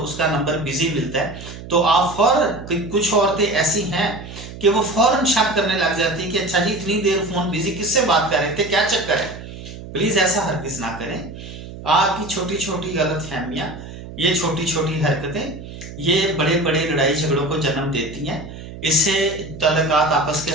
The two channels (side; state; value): right; noise; hum, 13 dB below the sound